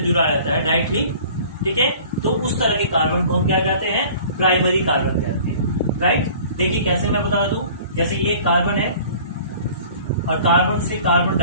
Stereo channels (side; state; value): both; inverted; correlation -0.47